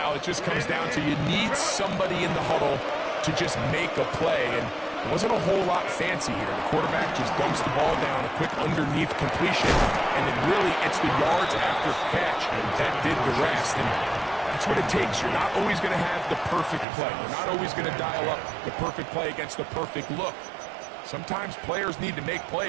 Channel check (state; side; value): drops out; left; at 16.9 s